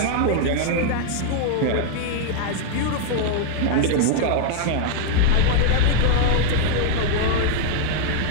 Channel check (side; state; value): both; different; correlation -0.01